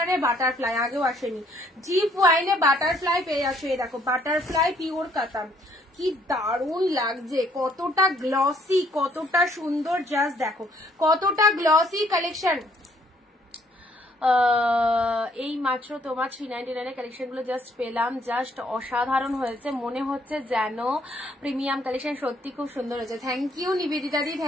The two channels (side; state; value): both; normal; correlation 0.65